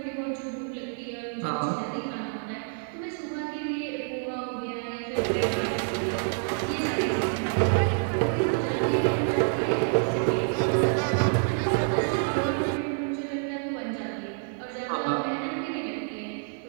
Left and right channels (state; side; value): silent; left; 60 dB below the other